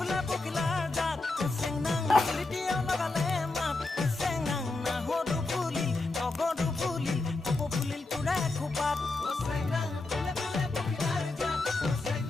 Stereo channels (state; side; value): quieter; right; 3.3 dB